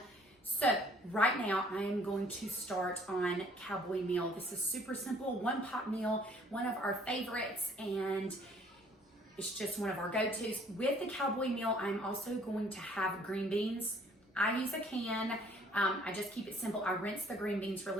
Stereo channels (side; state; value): both; normal; correlation 0.58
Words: So right now I am going to start on Cowboy Meal. This is super simple, one pot meal, one of our favorites, and it's just one of our go-tos. With the Cowboy Meal, I'm also going to have green beans. I use a can. I just keep it simple. I rinse the green beans